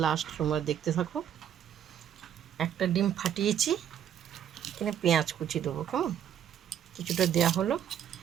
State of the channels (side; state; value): left; quieter; 9.6 dB